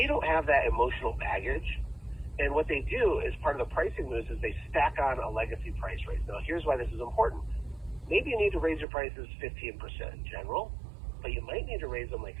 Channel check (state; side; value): drops out; left; at 8.8 s